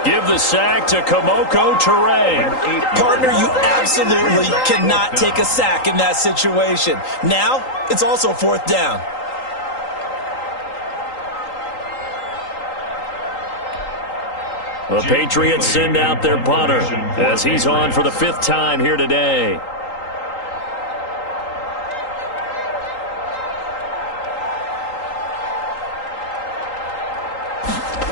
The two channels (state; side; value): late; right; 3.8 ms